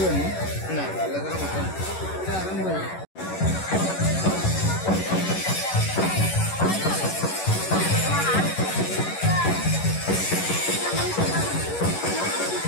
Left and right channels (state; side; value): late; right; 11 ms